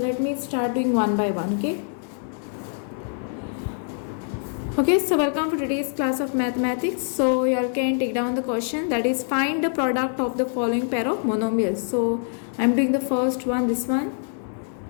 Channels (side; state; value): right; silent; 62 dB below the other